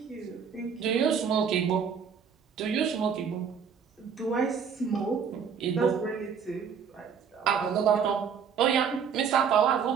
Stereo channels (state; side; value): quieter; left; 6.9 dB